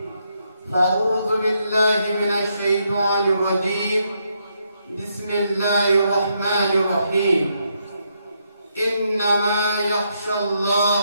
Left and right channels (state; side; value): inverted; both; correlation -0.78